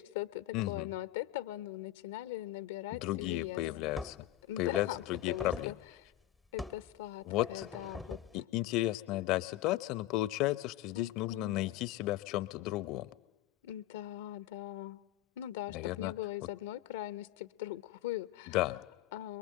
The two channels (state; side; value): quieter; right; 14.6 dB